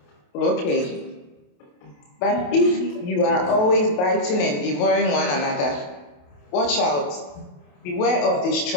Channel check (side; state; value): right; late; 28 ms